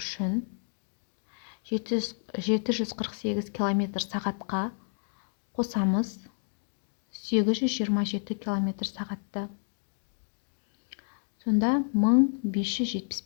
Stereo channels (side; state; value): right; silent; 58 dB below the other